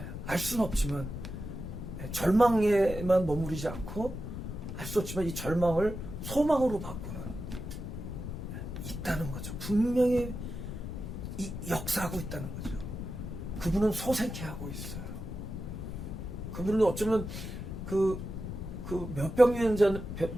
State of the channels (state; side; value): noise; left; rumble, 7 dB below the sound